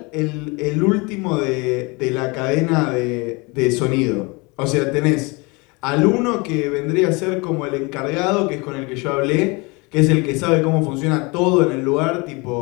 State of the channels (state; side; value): quieter; right; 27.5 dB